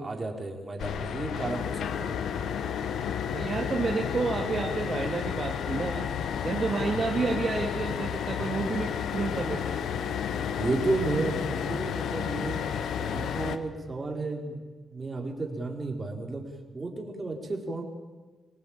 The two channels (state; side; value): normal; both; correlation 0.73